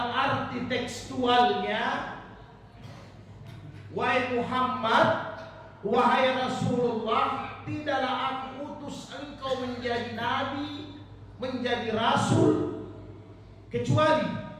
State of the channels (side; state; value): both; identical; correlation 1.00